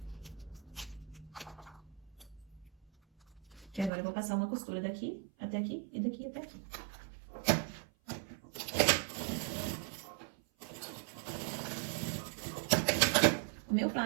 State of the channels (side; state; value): left; drops out; at 3.9 s